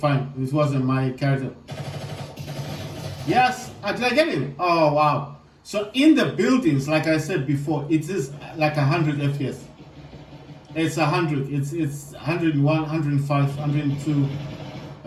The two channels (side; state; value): both; identical; correlation 1.00